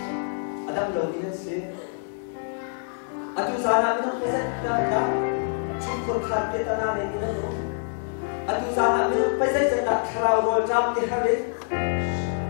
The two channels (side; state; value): right; silent; digital silence